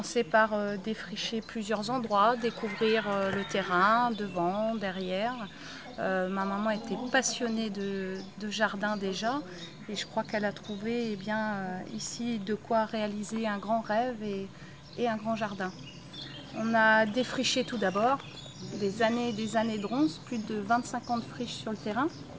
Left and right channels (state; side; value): identical; both; correlation 1.00